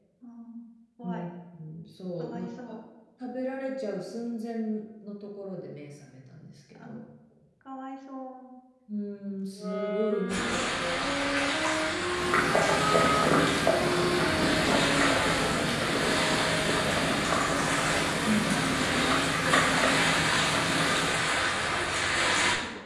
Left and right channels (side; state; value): both; identical; correlation 1.00